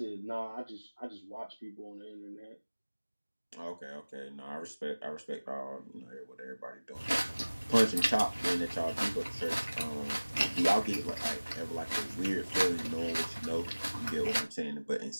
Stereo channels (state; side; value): inverted; both; correlation -1.00